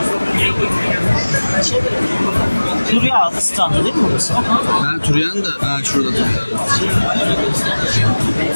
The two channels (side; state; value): both; inverted; correlation -1.00